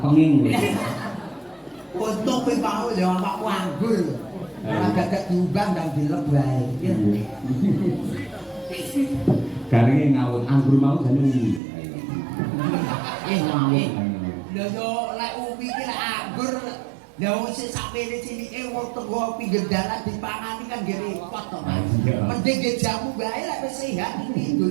penging kowe. Untung kowe mau ya awakku anggur. Ora gagak diumbang ndang dilep wae. Garinge ngawut anggur mau jane uwi. Ngawut. Lha yo lek uwi iki lek anggur lha wis sakmene cilike wong tenggo pinggir dalan dipangani kan nggih repot to Mas. Mending nggih jamu bae lek wis sehat iki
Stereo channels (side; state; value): left; drops out; at 11.6 s